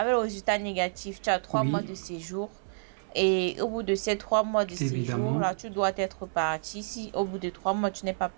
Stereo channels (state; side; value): silent; left; digital silence